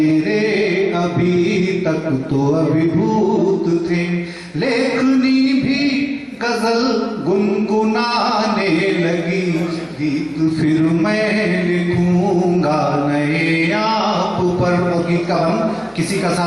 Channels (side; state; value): both; identical; correlation 1.00